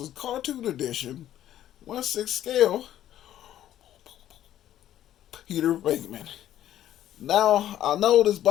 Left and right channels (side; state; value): right; quieter; 12.1 dB